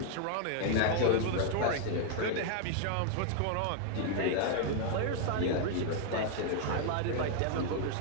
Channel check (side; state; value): both; different; correlation 0.00